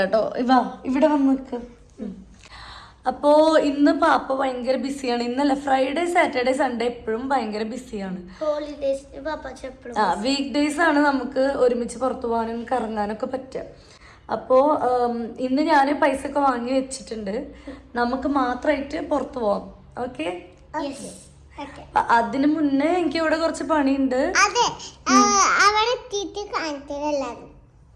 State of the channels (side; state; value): both; identical; correlation 1.00